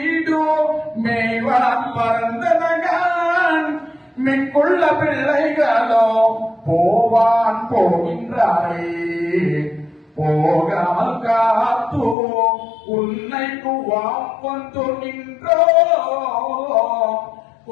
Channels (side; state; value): right; drops out; at 12.2 s